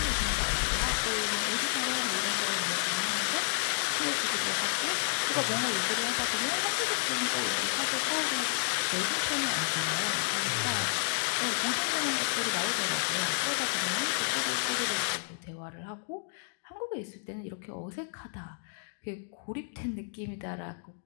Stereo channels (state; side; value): silent; right; digital silence